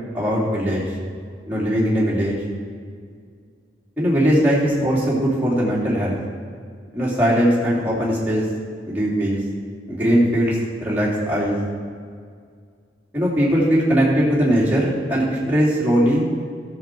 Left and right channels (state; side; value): normal; both; correlation 0.79